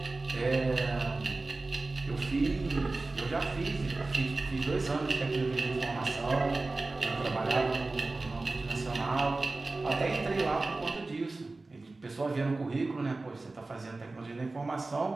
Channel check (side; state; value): left; quieter; 3.3 dB